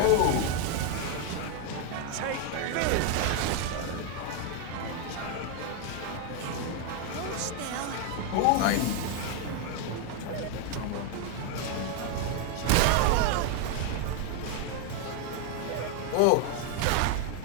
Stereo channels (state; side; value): different; both; correlation 0.01